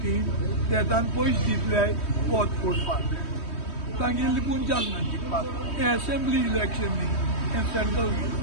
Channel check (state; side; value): late; right; 3.2 ms